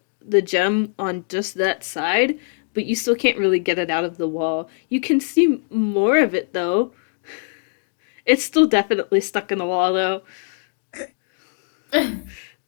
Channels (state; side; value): silent; right; 58 dB below the other